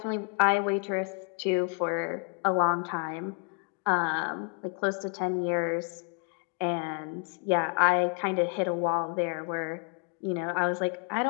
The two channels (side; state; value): right; quieter; 39.3 dB